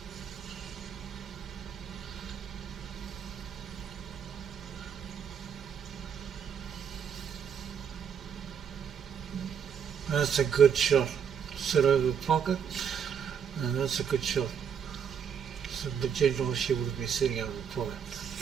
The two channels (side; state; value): left; quieter; 7.6 dB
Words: That's a good shot. Sit over the pocket, and that's a good shot. So the general she would be sitting over the pocket.